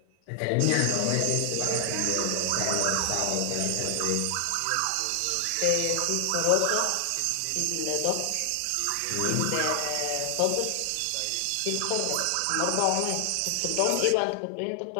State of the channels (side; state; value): both; different; correlation 0.00